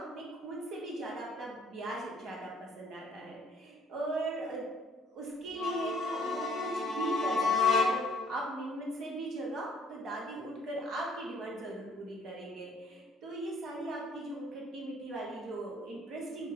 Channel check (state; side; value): normal; both; correlation 0.60